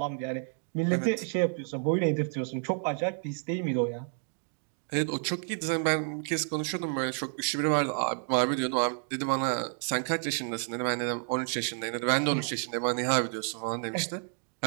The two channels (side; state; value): left; silent; 57 dB below the other